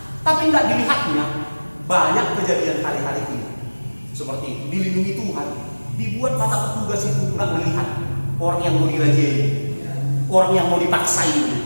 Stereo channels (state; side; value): inverted; both; correlation -1.00